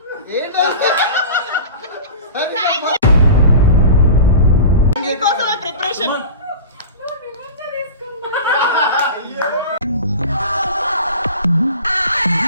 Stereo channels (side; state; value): both; inverted; correlation -0.35